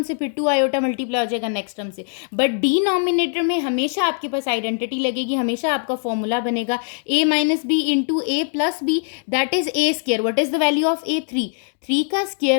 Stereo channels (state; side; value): silent; right; 57 dB below the other